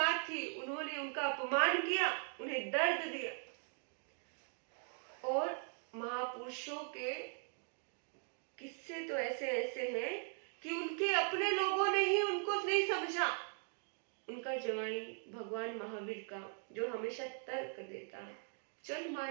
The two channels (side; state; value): left; silent; 51 dB below the other